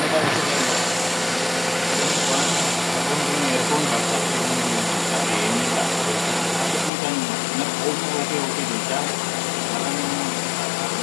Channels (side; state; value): right; drops out; at 6.9 s